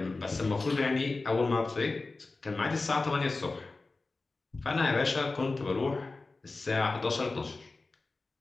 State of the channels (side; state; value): right; quieter; 3.6 dB